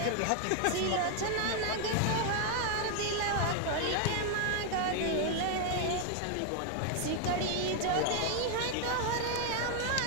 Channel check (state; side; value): different; both; correlation 0.00